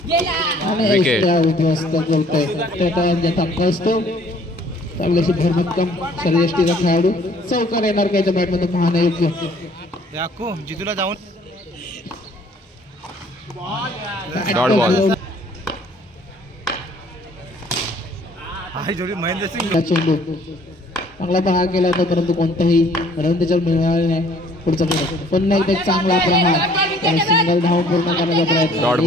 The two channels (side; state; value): both; normal; correlation 0.58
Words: विकेट. चांगल्याशी भरभक्कम शरीरयष्टीचा खेळाडू. चौकार येणार का याच्या बॅटमध्ये पाहणं योग्य. जितूला जाऊन डॉट बॉल. महेंद्रसिंग चेंडू चांगला प्रहार केला होता परंतु कोणताही रन त्याच्यावर मिळाले नाही. पुढचा पुन्हा एकदा चांगला प्रहार. सिंगल धाव पूर्ण करण्याचा प्रयत्न.